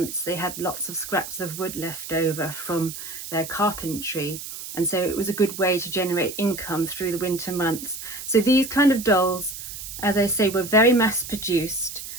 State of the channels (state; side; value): noise; right; hiss, 10 dB below the sound